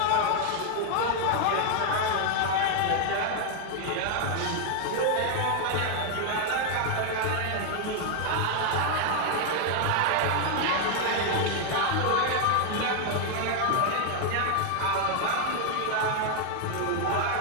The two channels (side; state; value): both; different; correlation 0.00